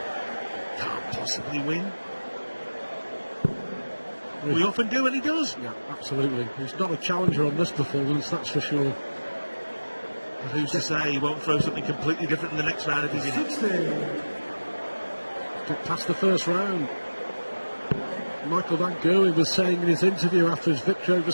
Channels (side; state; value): both; inverted; correlation -1.00